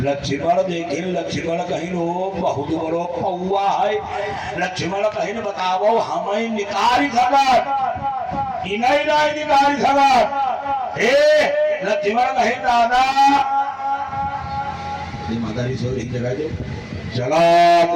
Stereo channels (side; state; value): both; identical; correlation 1.00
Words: लक्ष्मण देखे, लक्ष्मण कहीं बहुत बड़ो पौआ है। लक्ष्मण कहीं बताओ हमें निकाल सकत, इन्हें नहीं निकाल सकत। लक्ष्मण कहीं दादा मातारी सोरी जगह दे जगत